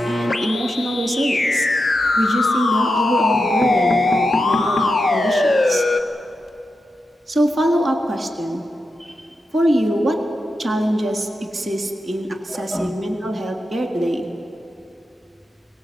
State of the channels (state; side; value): normal; both; correlation 0.89